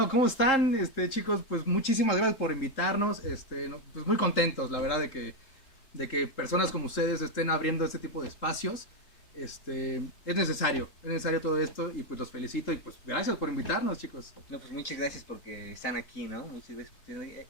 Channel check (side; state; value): right; late; 3.7 ms